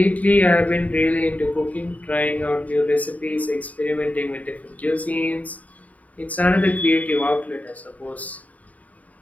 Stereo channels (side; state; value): right; late; 0.071 ms